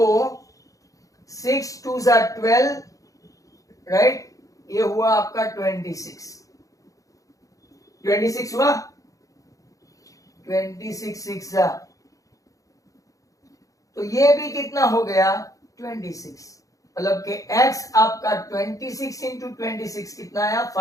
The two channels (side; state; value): right; late; 0.16 ms